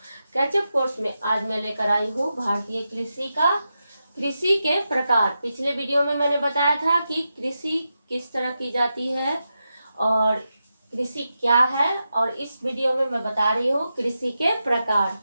कैचअप कोर्स में आज मैं लेकर आई हूँ भारतीय कृषि के प्रकार। पिछले वीडियो में मैंने बताया था कि कृषि किस तरह की जाती है और कृषि क्या है, और इस वीडियो में मैं बता रही हूँ कृषि के प्रकार।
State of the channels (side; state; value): both; inverted; correlation -0.89